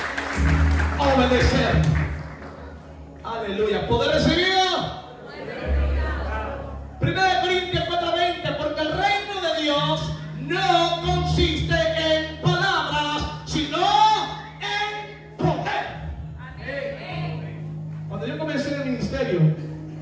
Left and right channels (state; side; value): identical; both; correlation 1.00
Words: Obedecer. Aleluya. Poder recibido. 1 Corintios 4:20, porque el reino de Dios no consiste en palabras, sino en poder. Cuando yo comencé en el ministerio,